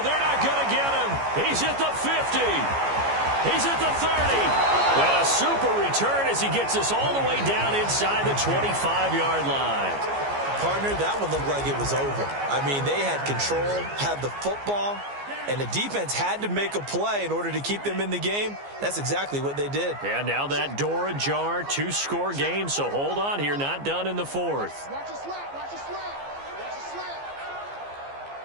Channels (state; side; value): late; left; 15 ms